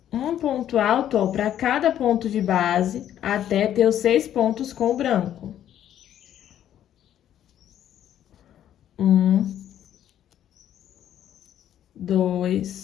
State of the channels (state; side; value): quieter; right; 10.9 dB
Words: Um ponto alto, para cada ponto de base, até ter os 6 pontos com o branco. 1,